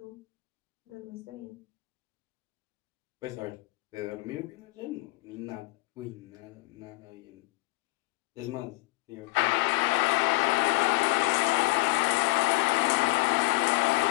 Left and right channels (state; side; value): quieter; right; 23.0 dB